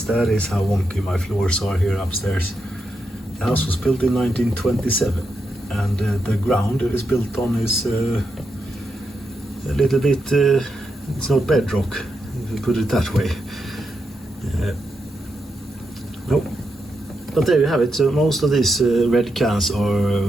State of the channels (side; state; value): both; normal; correlation 0.84